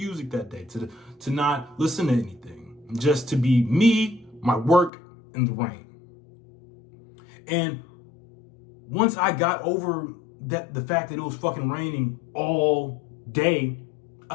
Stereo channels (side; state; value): right; drops out; at 4.9 s